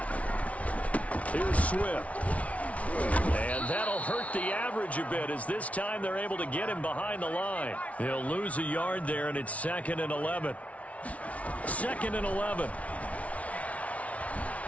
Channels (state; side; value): late; right; 0.066 ms